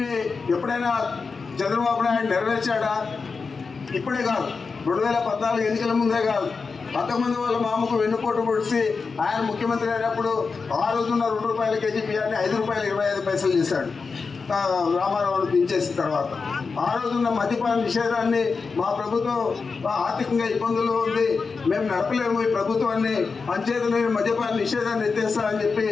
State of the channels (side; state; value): right; quieter; 4.8 dB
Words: ఎప్పుడైనా చంద్రబాబు నాయుడు నెరవేర్చాడా? ఇప్పుడే కాదు, 2014 ఎన్నికల ముందే కాదు, 19 వాళ్ళ మామకు వెన్నుపోటు పొడిచి ఆయన ముఖ్యమంత్రి అయినప్పుడు ఆ రోజున్న ₹2 కేజీ బియ్యాన్ని ₹5.25 చేశాడు రామారావును దించేసిన తర్వాత. ఆ రోజున్న మద్యపాన నిషేధాన్ని మా ప్రభుత్వం ఆర్థికంగా ఇబ్బందుల్లో ఉంది, మేము నడపలేము ఈ ప్రభుత్వాన్ని, అంచేత నేను మద్యపాన నిషేధాన్ని ఎత్తేస్తానని చెప్పి